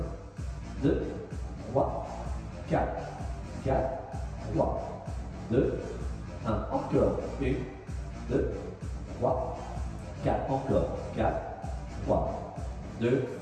1, 2, 3, 4, 4, 3, 2, 1, encore. 1, 2, 3, 4, encore. 4, 3, 2.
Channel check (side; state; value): both; identical; correlation 1.00